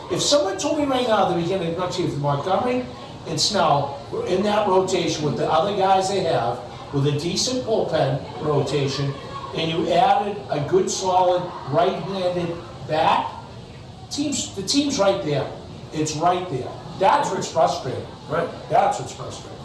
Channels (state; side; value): identical; both; correlation 1.00